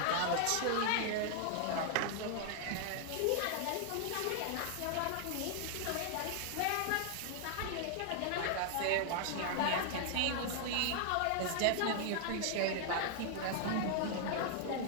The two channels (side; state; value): both; different; correlation 0.00